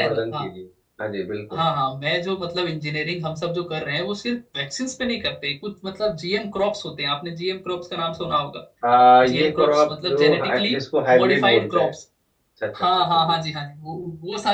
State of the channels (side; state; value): both; identical; correlation 1.00